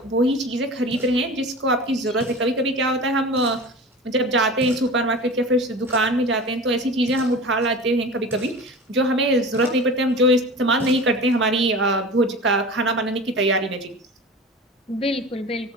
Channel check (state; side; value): normal; both; correlation 0.34